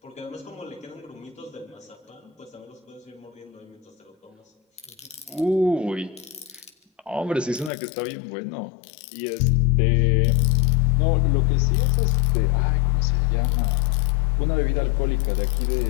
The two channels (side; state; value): right; drops out; at 7.7 s